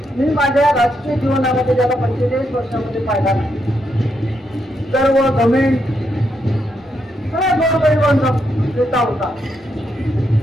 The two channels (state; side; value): normal; both; correlation 0.80